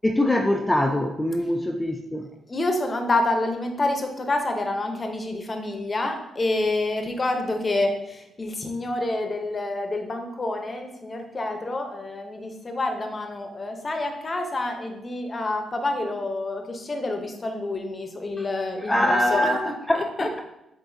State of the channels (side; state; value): both; normal; correlation 0.89